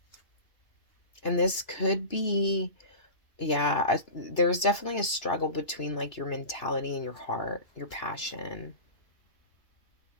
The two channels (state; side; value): late; right; 2.9 ms